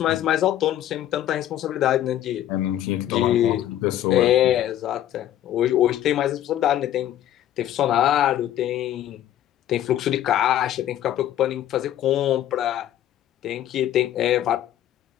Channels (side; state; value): right; quieter; 12.0 dB